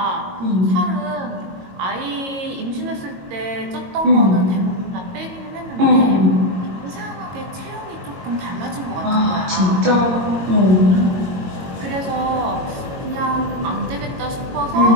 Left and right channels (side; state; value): left; late; 22 ms